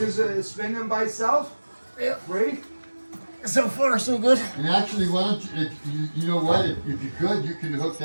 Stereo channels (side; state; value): both; inverted; correlation -1.00